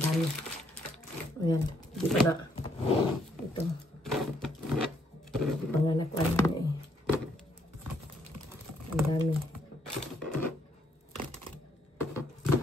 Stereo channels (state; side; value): normal; both; correlation 0.71